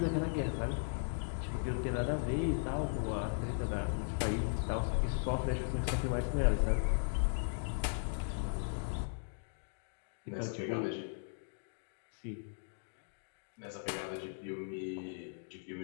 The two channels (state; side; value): silent; right; digital silence